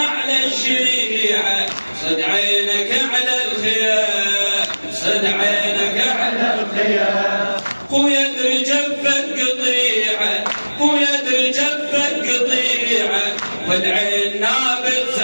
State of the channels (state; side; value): inverted; both; correlation -1.00